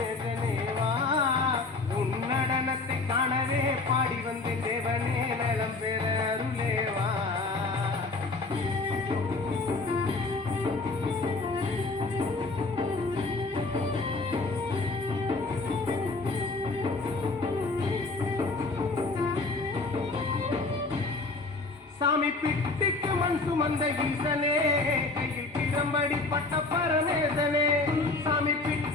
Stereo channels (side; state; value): right; quieter; 3.5 dB